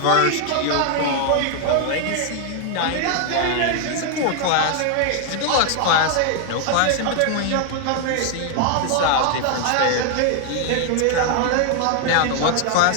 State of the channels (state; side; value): different; both; correlation 0.00